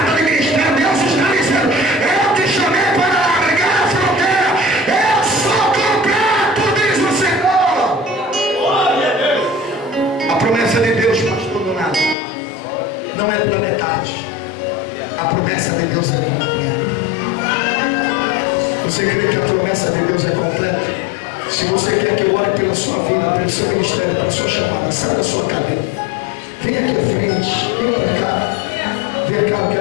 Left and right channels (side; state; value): right; drops out; at 12.2 s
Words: de ministério? Deus está dizendo: eu te chamei para largar a fronteira, eu sou completo, diz o Senhor. A promessa de Deus, pastor Donato, não é pela metade. A promessa de Deus é completa. Você crê que a promessa de Deus é completa? Se você quer que eu ore pela sua vida, pelo seu ministério, pela sua chamada, sai da sua cadeira, vem aqui à frente, vem para cá. Vem cá, eu